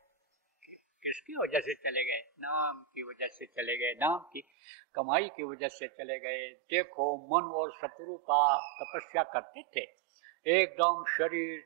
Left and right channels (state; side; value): drops out; left; at 4.5 s